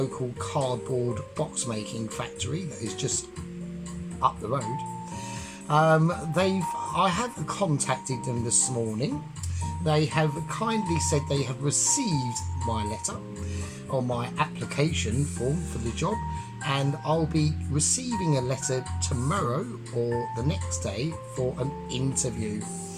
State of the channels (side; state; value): both; identical; correlation 1.00